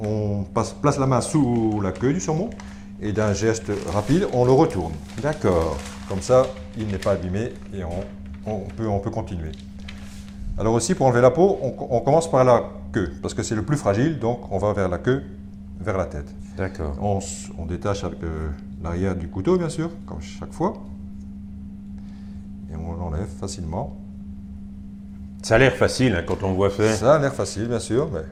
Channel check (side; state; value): both; identical; correlation 1.00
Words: place la main sous la queue du saumon et d'un geste rapide, on le retourne. D'accord. Comme ça, il n'est pas abîmé et on peut continuer. Alors aussi, pour enlever la peau, on commence par la queue, parce que c'est le plus fragile, donc on va vers la queue, vers la tête. D'accord. On détache avec l'arrière du couteau, bien sûr, comme chaque fois. Et on l'enlève facilement. Ça a l'air facile hein, quand on le voit faire. Ça a l'air facile, bien sûr, mais